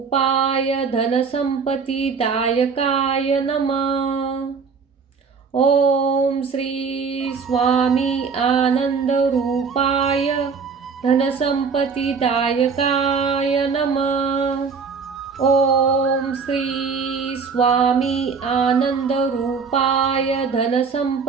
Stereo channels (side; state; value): left; quieter; 5.4 dB